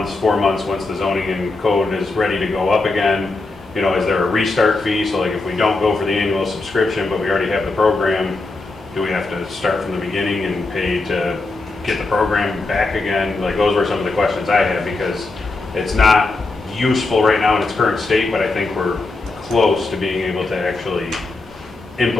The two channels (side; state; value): right; quieter; 3.4 dB